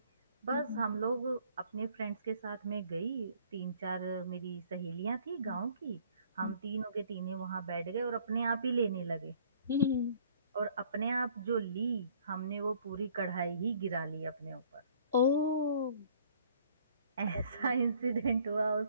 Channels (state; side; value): inverted; both; correlation -0.58